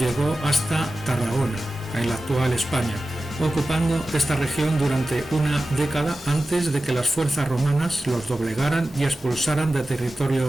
hasta Tarragona, en la actual España, ocupando esta región durante una década antes de que las fuerzas romanas los doblegaran y expulsaran de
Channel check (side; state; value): both; normal; correlation 0.94